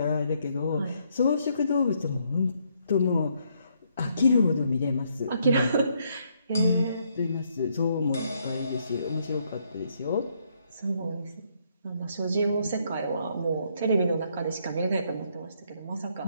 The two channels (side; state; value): both; inverted; correlation -0.72